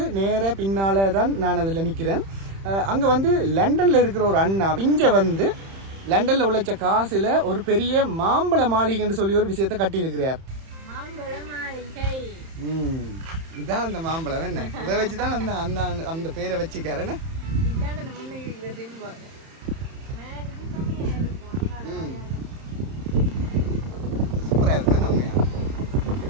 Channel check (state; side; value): late; left; 31 ms